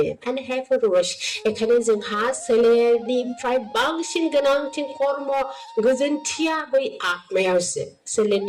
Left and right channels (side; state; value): both; identical; correlation 1.00